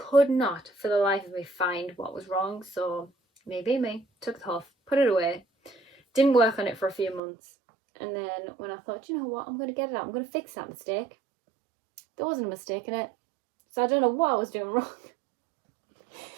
not for the life of me find what was wrong. So maybe me, took it off, put it away, didn't work on it for a few months, and then when I thought, you know what, I'm going to get it out, I'm going to fix that mistake, there wasn't a mistake in it. So I don't know what I was doing wrong.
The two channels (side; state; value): left; drops out; at 7.2 s